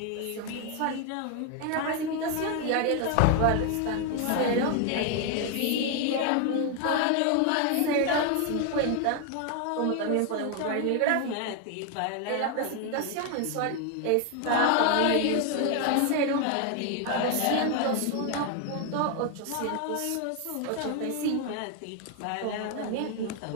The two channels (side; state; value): both; different; correlation 0.01